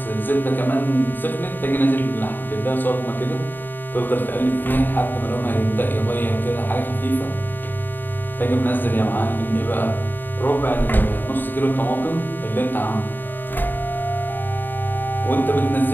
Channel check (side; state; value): right; late; 0.092 ms